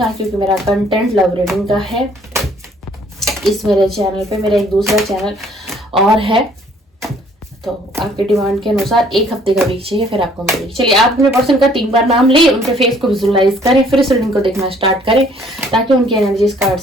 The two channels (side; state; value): both; normal; correlation 0.60